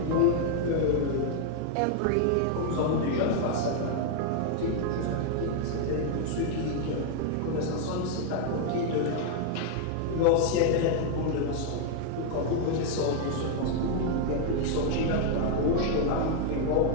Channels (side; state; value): both; different; correlation 0.00